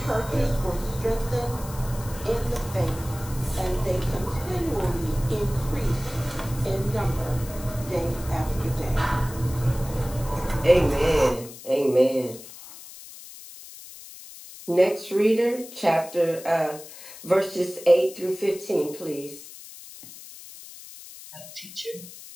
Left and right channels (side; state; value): left; noise; hiss, 16 dB below the sound